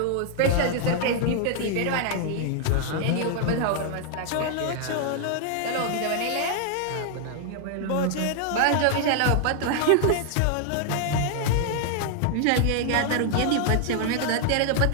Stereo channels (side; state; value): both; different; correlation 0.00